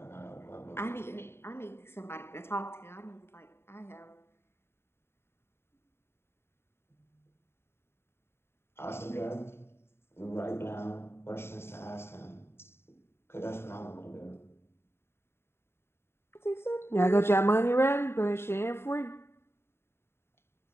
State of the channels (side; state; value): right; late; 0.12 ms